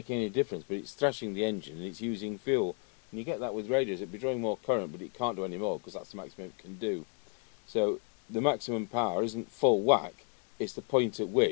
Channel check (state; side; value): quieter; right; 38.8 dB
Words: any difference, but it's thrashing the engine and it's using fuel, and you get that with radios. It'd be drawing more current, but it can't do any more because that's the maximum it can do. So the maximum power isn't full whack, it's the point at